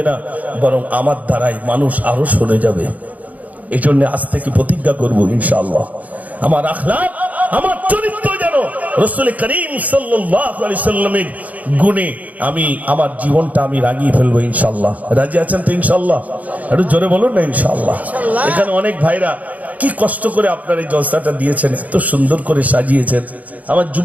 না, বরং আমার দ্বারাই মানুষ আরো সরে যাবে। এই জন্য আজ থেকে প্রতিজ্ঞা করব ইনশাআল্লাহ, আমার আখলাক আমার চরিত্র যেন রাসূল করিম সাল্লাল্লাহু আলাইহি সাল্লামের গুণে আমি আমার জীবনটা আমি রাঙিয়ে ফেলবো ইনশাআল্লাহ। রাজি আছেন তো ইনশাআল্লাহ? একটু জোরে বলুন না ইনশাআল্লাহ। এখানে অনেক ভাইরা কি কষ্ট করে আপনার এই জলসাটা দিয়েছেন, এত সুন্দর করে সাজিয়েছেন। আমার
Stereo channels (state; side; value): late; left; 0.075 ms